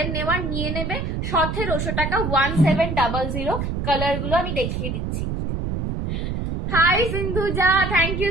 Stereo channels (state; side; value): noise; right; rumble, 3 dB below the sound